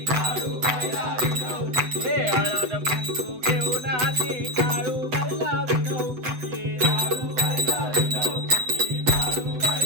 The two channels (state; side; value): late; left; 7.9 ms